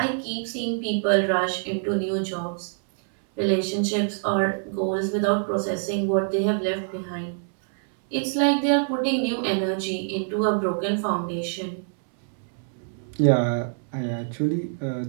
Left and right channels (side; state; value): left; silent; 62 dB below the other